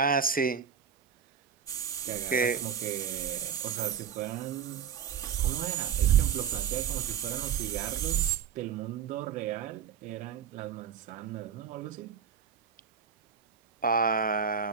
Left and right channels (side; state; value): left; quieter; 7.6 dB